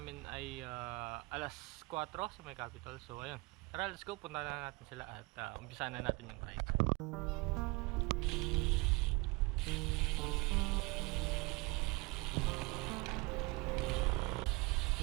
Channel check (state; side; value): quieter; left; 25.3 dB